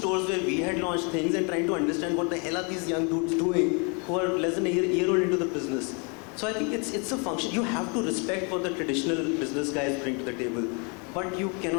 where we had launched things and trying to understand what the hell are these young dudes doing who are less than a year old into the business. So I think it's a function. You have to respect what the traditional business guys bring to the table, but you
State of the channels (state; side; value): quieter; right; 34.3 dB